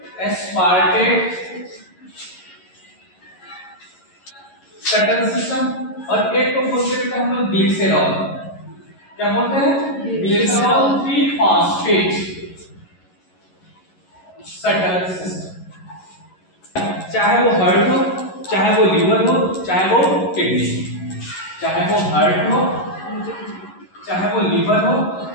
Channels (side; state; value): right; late; 11 ms